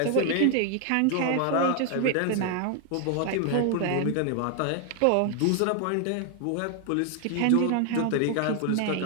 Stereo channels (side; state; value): both; different; correlation 0.00